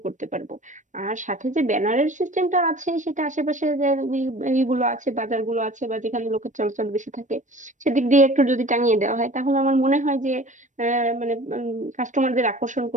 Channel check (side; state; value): left; late; 0.36 ms